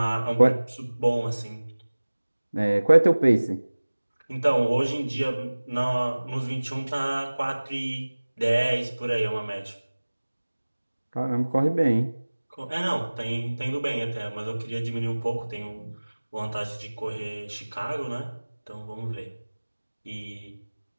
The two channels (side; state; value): both; inverted; correlation -1.00